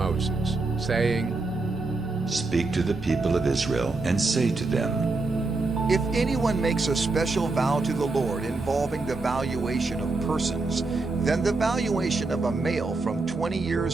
saying, Speak to the people of Israel, and say to them, If anyone makes a special vow to the Lord involving the valuation of persons, then the valuation of a male from 20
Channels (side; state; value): left; quieter; 3.5 dB